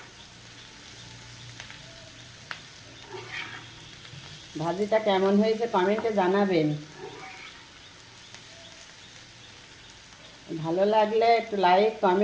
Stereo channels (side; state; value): both; identical; correlation 1.00